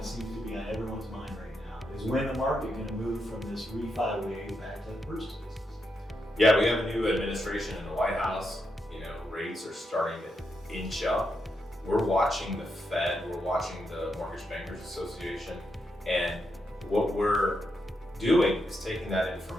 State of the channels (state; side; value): normal; both; correlation 0.83